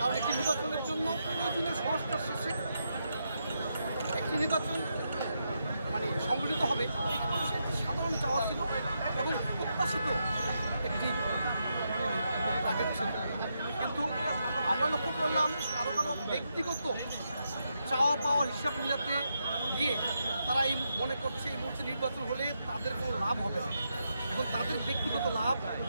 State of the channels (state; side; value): inverted; both; correlation -0.83